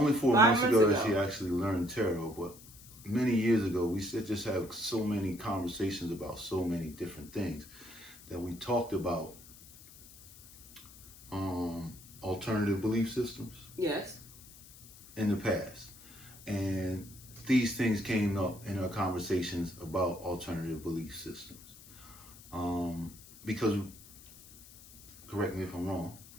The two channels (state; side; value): noise; left; hiss, 20 dB below the sound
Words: 4 5 months ago that months she ago. actually learned tarot, but many years ago, we just have so many conversations about so many different things that we talked about alternative belief systems. Yes. In the past. And these things came up in our conversations about alternative belief systems. Because, correct me if I'm wrong,